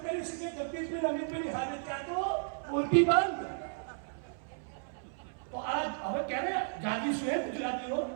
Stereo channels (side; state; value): left; silent; 55 dB below the other